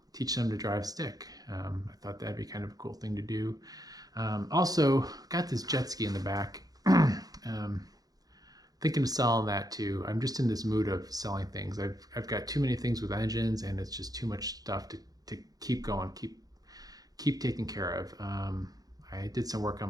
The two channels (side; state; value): left; late; 0.18 ms